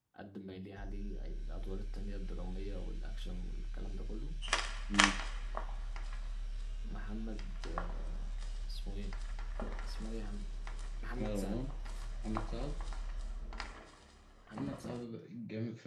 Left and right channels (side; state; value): both; identical; correlation 1.00